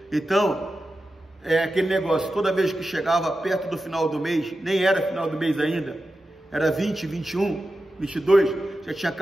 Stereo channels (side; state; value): both; normal; correlation 0.92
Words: Então, é aquele negócio, toda vez que chegava perto do final do mês, nem era final do mês ainda, era 20, 21, 22, já tinha